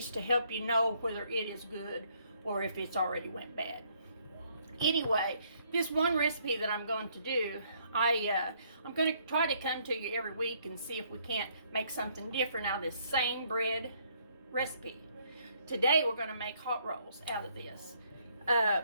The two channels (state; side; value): inverted; both; correlation -0.67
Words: to help you know whether it is good or if it's already went bad. Anyway, this one recipe that I'm going to do, I'm going to try to come to you every week and see if we can't make something different out of this same bread recipe. Today we're going to make hot rolls out of this.